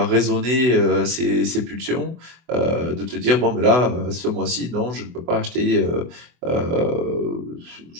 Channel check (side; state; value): left; late; 24 ms